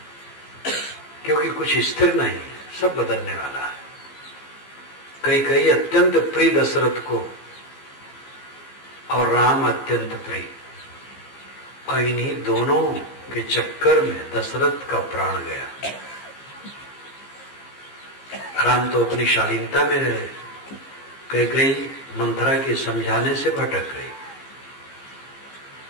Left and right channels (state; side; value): late; right; 15 ms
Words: क्योंकि कुछ स्थिर नहीं, सब बदलने वाला है। कई अत्यंत प्रिय दशरथ को और राम अत्यंत प्रिय, और इन्हीं दोनों के चक्कर में दशरथ का प्राण गया। राम तो अपनी शालीनता में रहे, कई मंथरा के समझाने से भटक गई,